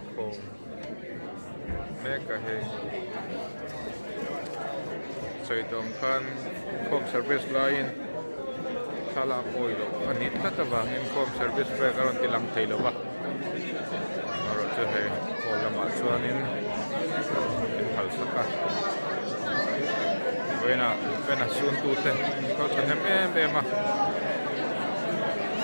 com me ka he soi dong khan com service line sala oilo ani tata wang in com service pe karon tilang thailo ba aro che he hola ma chuanin in hal saka vena sun tu te ko chanem em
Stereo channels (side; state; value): both; inverted; correlation -1.00